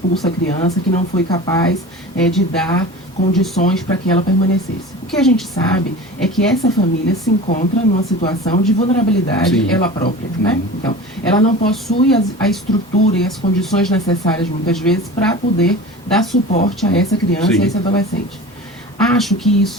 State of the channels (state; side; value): normal; both; correlation 0.35